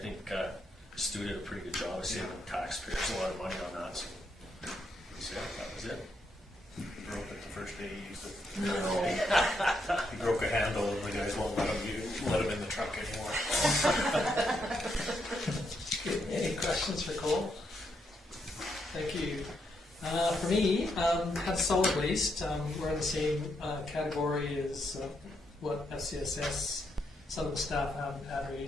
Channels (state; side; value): normal; both; correlation 0.79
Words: think Stu did a pretty good job of saving taxpayers a lot of money on that. So yeah, that was it. He broke it the first day he used it. No. He broke a handle, and the guys won't let him in the truck anymore. Any questions for Cole? Thank you. For me, had solid waste. We're in the same category as what FCSS. Some of the staff haven't had